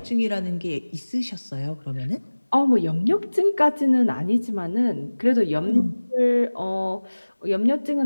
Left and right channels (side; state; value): both; inverted; correlation -1.00